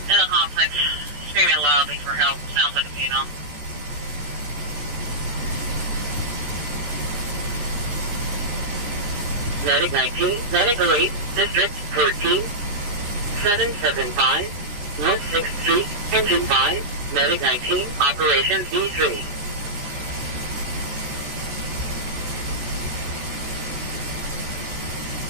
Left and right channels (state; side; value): late; left; 14 ms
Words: in the complex, screaming loudly for help. Sounds like a funeral. Medic 19, Medic 8, District 14, 775, North 6th Street, Engine 5, Medic 19, Operations D3.